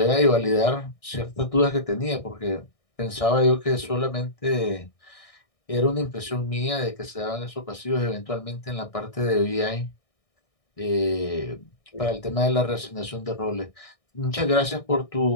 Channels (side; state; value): right; late; 1.6 ms